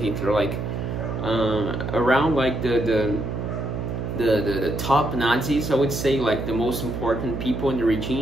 like around like the top Nazis, I would say, like the most important people in the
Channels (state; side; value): noise; right; hum, 5 dB below the sound